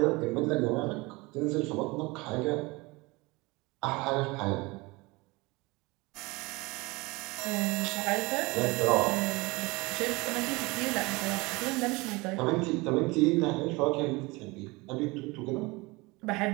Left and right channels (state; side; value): quieter; left; 24.1 dB